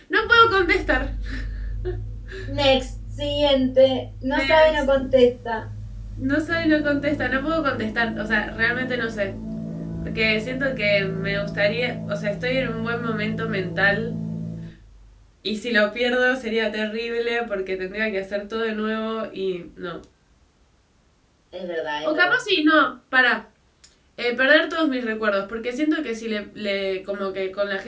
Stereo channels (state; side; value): identical; both; correlation 1.00